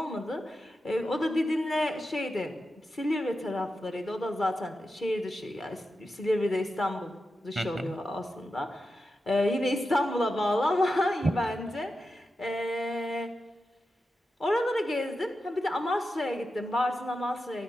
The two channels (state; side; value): normal; both; correlation 0.90